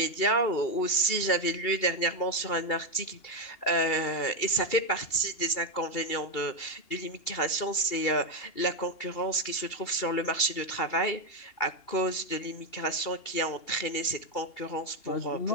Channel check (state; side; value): late; right; 2.8 ms